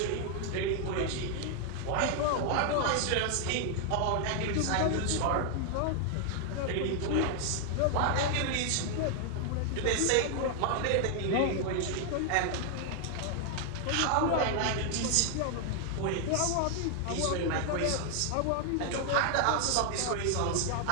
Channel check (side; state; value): both; different; correlation 0.00